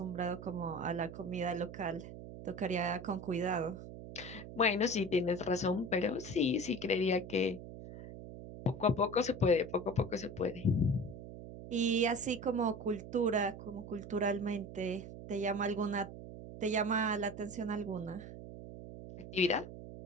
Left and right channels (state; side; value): noise; right; hum, 12 dB below the sound